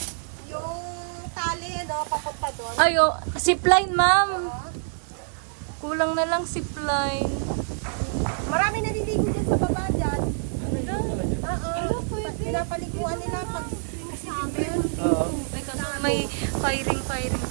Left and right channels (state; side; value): silent; left; 61 dB below the other